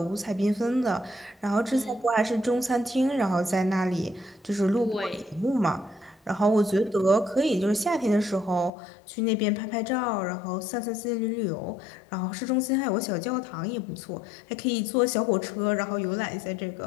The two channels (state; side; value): drops out; right; at 8.7 s